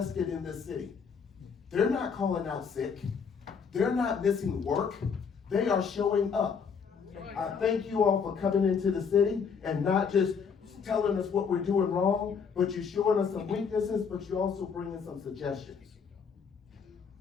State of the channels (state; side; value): quieter; right; 6.1 dB